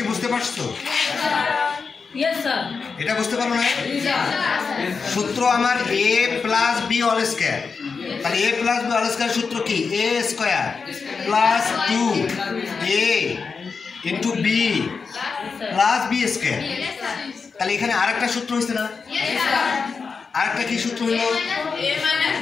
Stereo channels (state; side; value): quieter; right; 5.1 dB